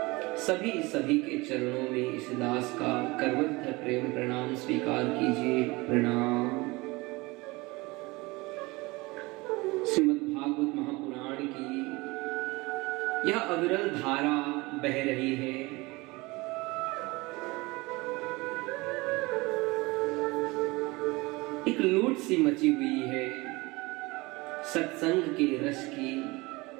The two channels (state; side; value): quieter; left; 23.3 dB